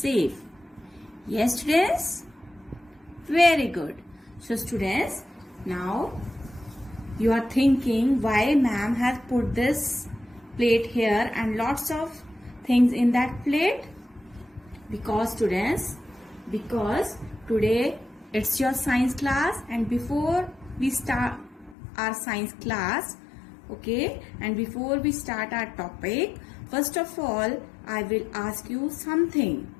Yes students? Very good. So students, now you are thinking why ma'am has put this plate here and lots of things in that plate? Because students, because today it's your science class and before we start our science class, okay, and before we start our topic, first of all I will ask you something,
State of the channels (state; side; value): drops out; right; at 21.8 s